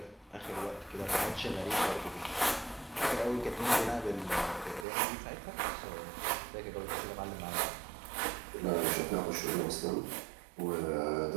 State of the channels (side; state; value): left; drops out; at 4.9 s